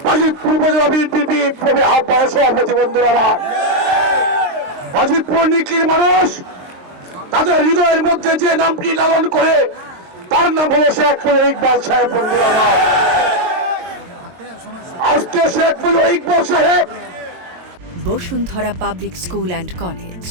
বাজিতপুর উপজেলা বিএনপির বিপ্লবী আহ্বায়ক সভাপতি। বন্ধুরা আমার, বাজিতপুর নিকলির মানুষ তাদের হৃদয়ের মধ্যে যে নামটি লালন করে তার নাম হলো শেখ মুজিবুর ইকবাল সাহেব। বন্ধুরা আমার, আজকে শেখ মুজিবুর ইকবাল সাহেব Bashundhara public school and college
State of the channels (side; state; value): left; late; 22 ms